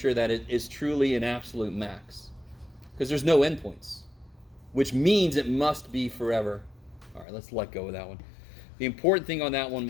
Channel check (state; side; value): drops out; right; at 7.2 s